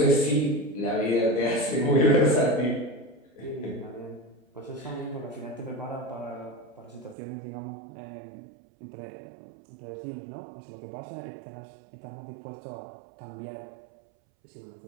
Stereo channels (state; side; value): drops out; left; at 7.2 s